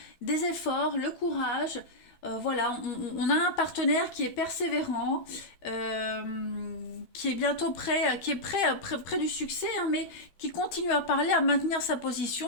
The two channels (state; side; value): late; right; 12 ms